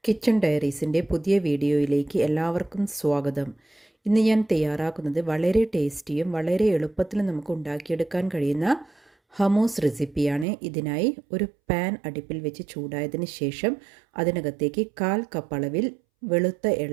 Kitchen ഡയറീസിൻ്റെ പുതിയ വീഡിയോയിലേക്ക് എല്ലാവർക്കും സ്വാഗതം. ഇന്ന് ഞാൻ തയ്യാറാക്കുന്നത് വളരെ ടേസ്റ്റിയും വളരെ എളുപ്പത്തിലും നമുക്ക് ഉണ്ടാക്കിയെടുക്കാൻ കഴിയുന്ന ഹമൂസ് റെസിപ്പിയാണ്. ഇതിനായി ഒരു പാൻ അടുപ്പിൽ വെച്ച് ചൂടായതിന് ശേഷം അതിനകത്തേക്ക് 1/4 കപ്പ് അളവിൽ വെളുത്ത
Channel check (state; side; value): drops out; left; at 10.5 s